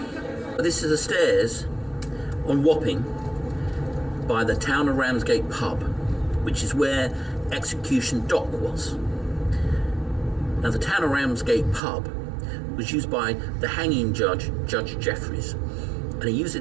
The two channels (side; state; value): left; drops out; at 11.8 s